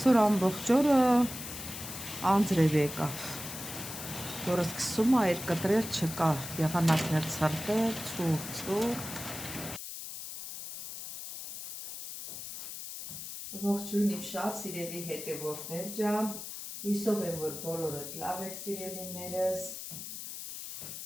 ամբողջ օրը անձրև եկավ, որը սկսում է այդ կտրել չկա, եղանակներ ցրտել, ցուրտ։ Ողջույն իմ շատ սիրելի հետևորդներ ջան, հույսով եմ, որ բոլորդ լավ եք սիրելիներս։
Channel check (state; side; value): noise; left; hiss, 9 dB below the sound